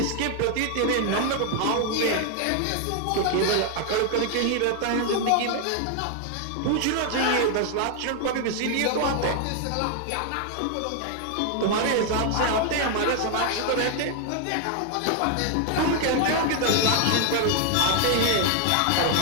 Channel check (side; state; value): both; different; correlation 0.00